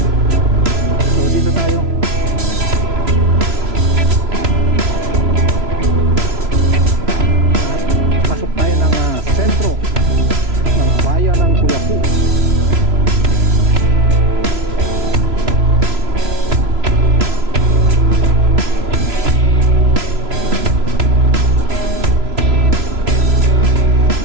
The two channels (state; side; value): late; left; 3.0 ms